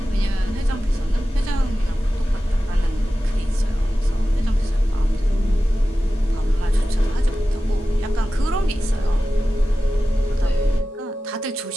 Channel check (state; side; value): normal; both; correlation 0.94